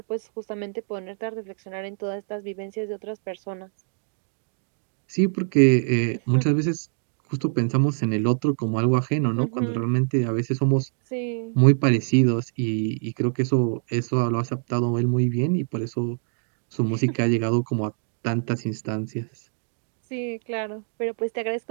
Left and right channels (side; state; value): left; silent; 62 dB below the other